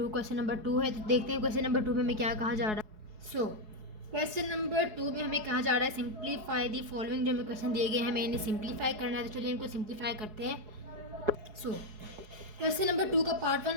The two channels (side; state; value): left; late; 4.7 ms